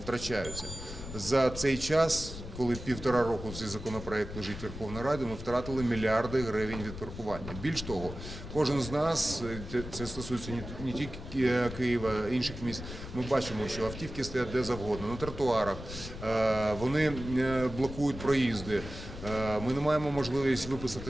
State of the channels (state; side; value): noise; left; rumble, 10 dB below the sound